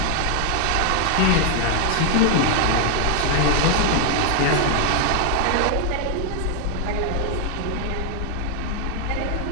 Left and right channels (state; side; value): different; both; correlation 0.00